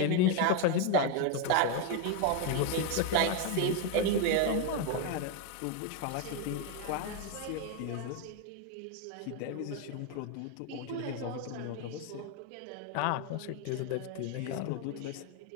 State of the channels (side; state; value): both; different; correlation 0.01